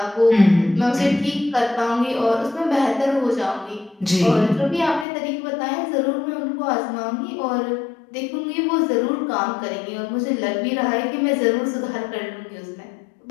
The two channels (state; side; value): drops out; right; at 5.1 s